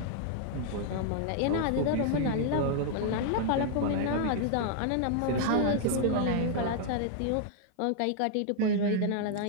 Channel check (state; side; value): different; both; correlation 0.00